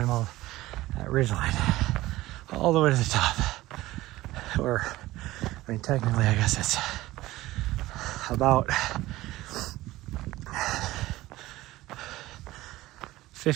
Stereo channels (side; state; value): left; quieter; 17.3 dB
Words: all that ridgeline all the way to the top. Or, I mean, technically, I guess it's about